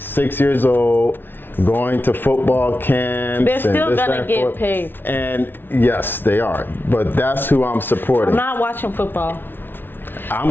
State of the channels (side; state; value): right; late; 0.10 ms